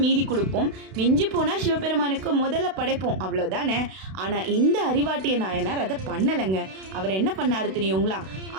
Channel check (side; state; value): left; late; 32 ms